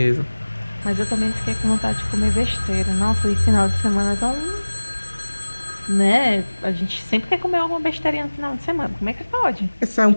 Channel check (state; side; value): inverted; both; correlation -1.00